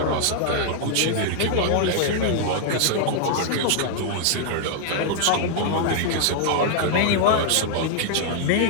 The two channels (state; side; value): different; both; correlation -0.01